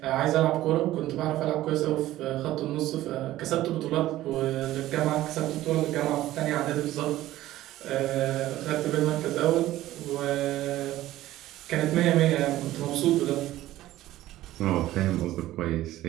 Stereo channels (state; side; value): quieter; left; 15.0 dB